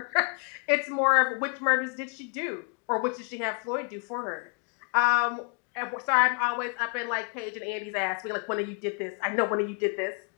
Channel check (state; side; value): quieter; right; 36.0 dB